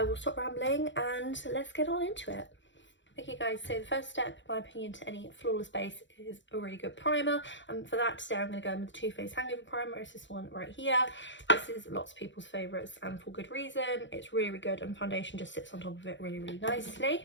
will stop rambling and let's get on into it. Okay guys, so the first step in my opinion to any flawless base is a really good primer, and for that today I'm going to go in with the Too Faced Hangover primer. It's this one right here. This is lots of people's favourites and for good reason. It's really good and foundation just sits on top of it really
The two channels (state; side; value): late; right; 0.54 ms